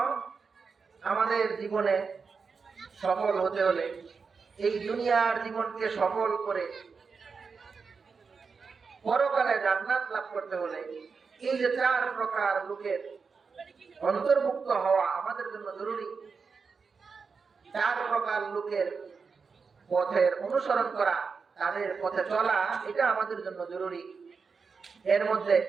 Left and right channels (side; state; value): left; quieter; 5.2 dB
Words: আমাদের জীবনে সফল হতে হলে, এই দুনিয়ার জীবনকে সফল করে পরকালে জান্নাত লাভ করতে হলে, এই যে 4 প্রকার লোকের অন্তর্ভুক্ত হওয়া আমাদের জন্য জরুরি। 4 প্রকার লোকের পথের অনুসরণ করা, তাদের পথে চলা, এটা আমাদের জন্য জরুরি। এর মধ্যে